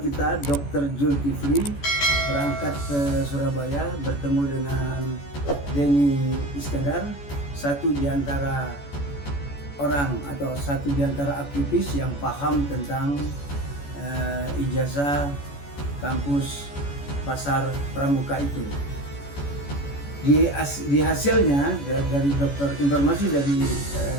kita Dr. Zulkifli berangkat ke Surabaya bertemu dengan Denny Iskandar, satu di antara orang atau satu di antara aktivis yang paham tentang ijazah kampus Pasar Pramuka itu. Di hasilnya dari informasi dari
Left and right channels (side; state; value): right; late; 14 ms